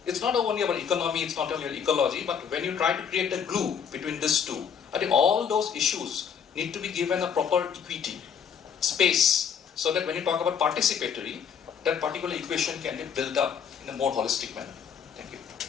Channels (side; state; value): right; quieter; 7.4 dB